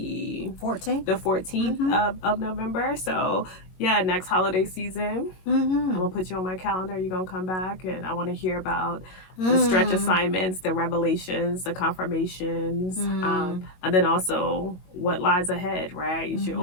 14th. The 14th of November. So yeah, next holiday season, I'm gonna put you on my calendar. You're gonna come back, and I want to hear about the stretch assignments, the revelations, the confirmations, and then also what lies ahead, right? You should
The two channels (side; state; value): right; late; 22 ms